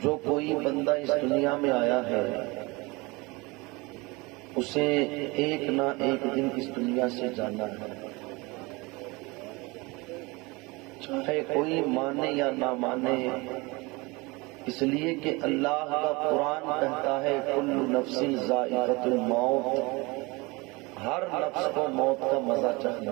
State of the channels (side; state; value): left; quieter; 24.9 dB